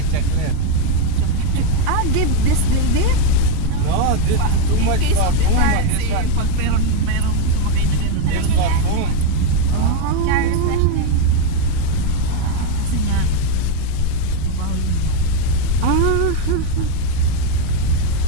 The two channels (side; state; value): both; different; correlation 0.02